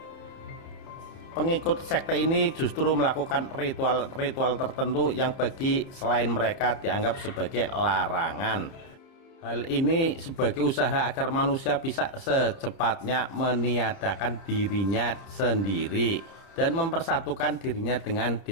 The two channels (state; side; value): late; right; 30 ms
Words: Pengikut sekte ini justru melakukan ritual-ritual tertentu yang bagi selain mereka dianggap sebagai larangan. Hal ini sebagai usaha agar manusia bisa secepatnya meniadakan dirinya sendiri dan mempersatukan dirinya dengan